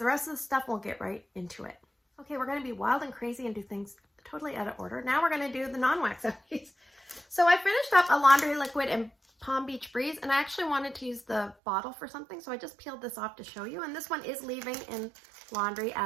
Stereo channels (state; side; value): drops out; left; at 11.6 s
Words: rest of the stuff. We'll get right into it. Okay, we're going to be wild and crazy and do things totally out of order. Now we're going to do the non-wax empties. So I finished up a laundry liquid in Palm Beach Breeze, and I actually wanted to use the bottle for something, so I just peeled this off to show you. And this one is leaving in laundry